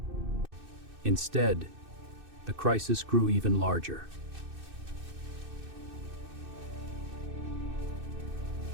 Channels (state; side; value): late; left; 2.6 ms